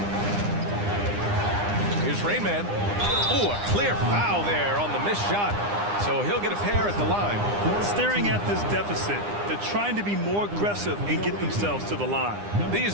Here's Rainman. Oh, a clear foul there on the missed shot. So he'll get a pair at the line. Staring at this deficit, they're trying to be more aggressive and get themselves to the line. These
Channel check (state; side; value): late; left; 9.8 ms